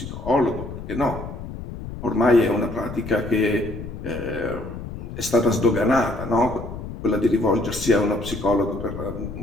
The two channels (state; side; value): noise; left; rumble, 9 dB below the sound